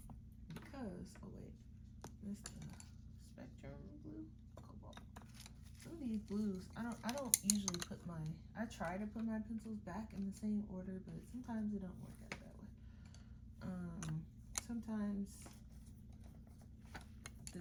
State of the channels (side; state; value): both; identical; correlation 1.00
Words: because, oh wait, this the Spectrum blue, Cobalt. Some of these blues, I don't usually put I try to put my pencils back in the same order, but sometimes it don't work out that way. Sometimes